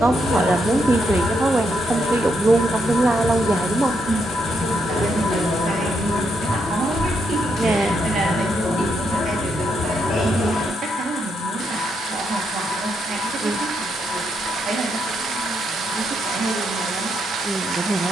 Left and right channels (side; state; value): both; normal; correlation 0.78